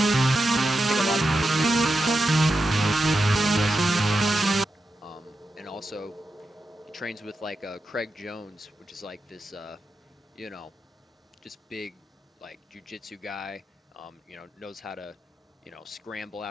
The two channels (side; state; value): both; normal; correlation 0.89